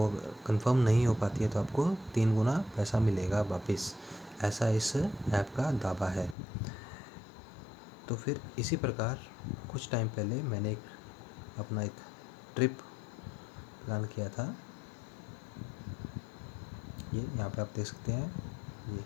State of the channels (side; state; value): right; drops out; at 6.4 s